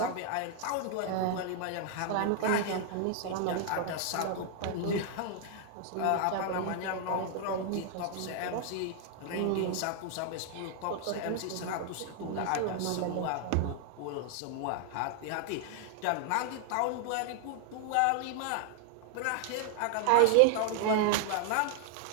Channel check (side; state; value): both; different; correlation 0.00